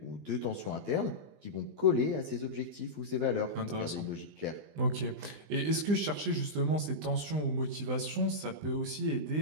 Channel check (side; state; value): left; late; 20 ms